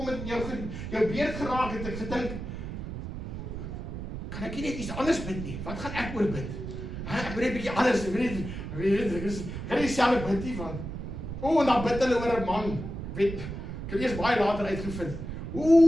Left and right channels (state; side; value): noise; right; rumble, 7 dB below the sound